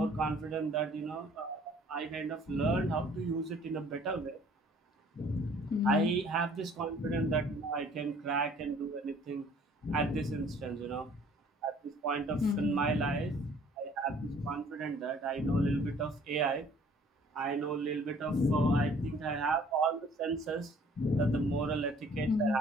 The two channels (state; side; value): normal; both; correlation 0.55